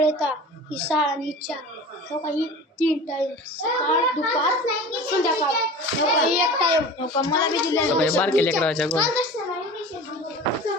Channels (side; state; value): both; normal; correlation 0.37